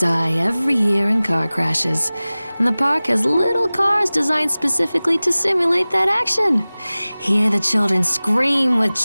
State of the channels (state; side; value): inverted; both; correlation -0.99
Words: every year in car crashes, and the park has little cars designed specifically to simulate that action. Hear the children scream with